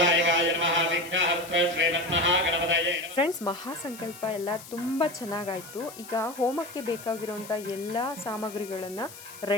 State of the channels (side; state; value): left; noise; hiss, 16 dB below the sound